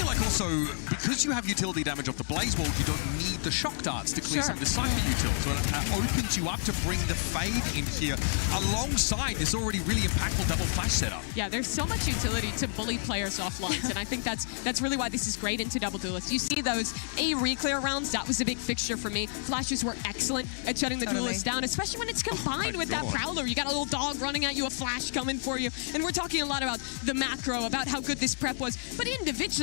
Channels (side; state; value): right; silent; digital silence